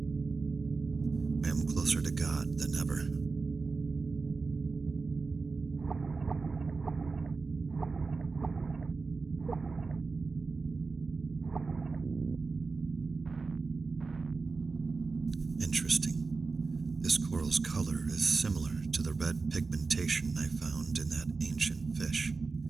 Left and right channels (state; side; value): quieter; left; 4.2 dB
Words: I am closer to God than ever. Interesting. This coral's color is similar to the red pigmentation I found in that ancient fish.